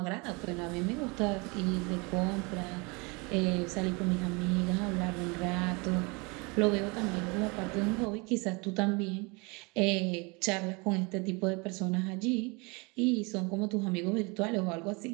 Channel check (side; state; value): left; quieter; 28.6 dB